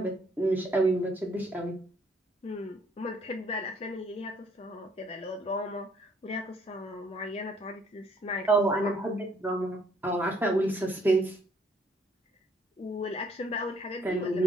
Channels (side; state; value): both; normal; correlation 0.65